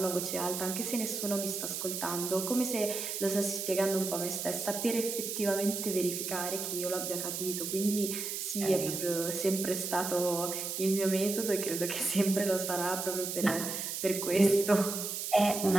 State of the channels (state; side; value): noise; right; hiss, 4 dB below the sound